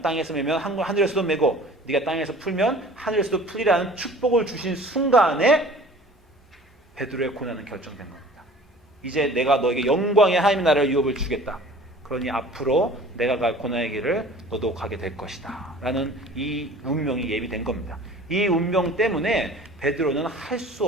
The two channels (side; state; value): both; normal; correlation 0.46